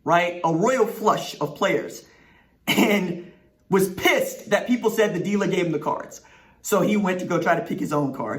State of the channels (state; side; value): identical; both; correlation 1.00